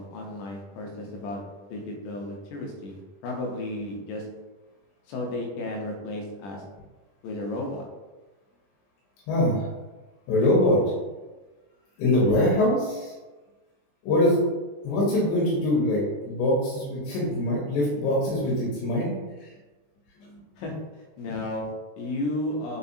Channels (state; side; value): late; right; 20 ms